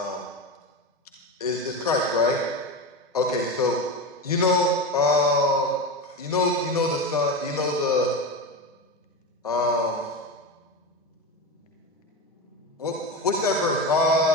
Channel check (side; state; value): both; normal; correlation 0.20